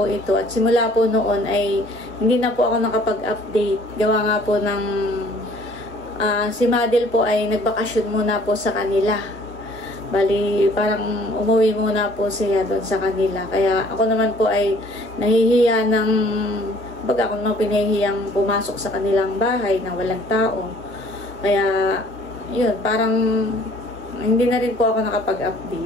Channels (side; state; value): both; normal; correlation 0.56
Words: ito at simula po noon ay hindi na po ako nakapag-update. Gawa nga po ng si Madel po ay nagbakasyon muna po sa kanila. Bali, parang umuwi muna po siya doon sa kanila. Kaya ako naman po ay nahihiya ng, baga ako naman pinahihiyang pumasok sa kanilang bahay na walang tao. Kaya, yun, parang hindi na rin po ako